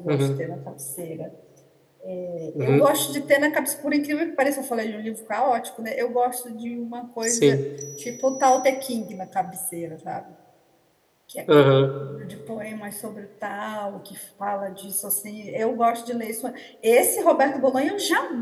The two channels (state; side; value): identical; both; correlation 1.00